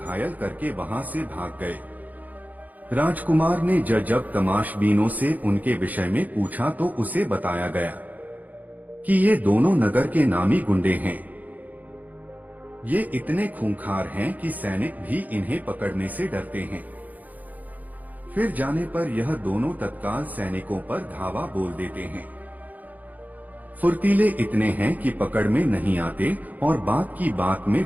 करके वहां से भाग गए। राजकुमार ने जब तमाशबीनों से उनके विषय में पूछा, तो उसे बताया गया कि ये दोनों नगर के नामी गुंडे हैं। ये इतने खूंखार हैं कि सैनिक भी इन्हें पकड़ने से डरते हैं। फिर जाने पर यह दोनों तत्काल सैनिकों पर धावा बोल देते हैं। फुर्तीले इतने हैं कि पकड़ में नहीं आते और बात की बात में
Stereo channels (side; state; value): left; late; 0.080 ms